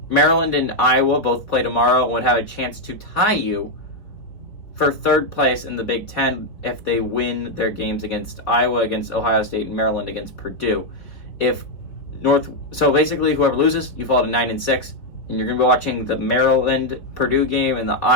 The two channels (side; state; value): right; late; 4.0 ms